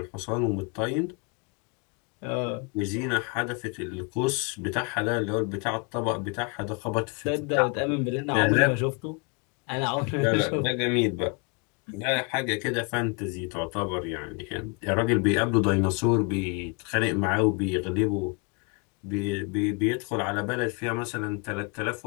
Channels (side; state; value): right; quieter; 31.2 dB